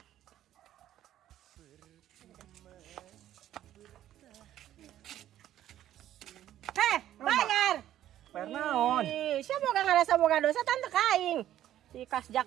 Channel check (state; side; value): quieter; left; 12.2 dB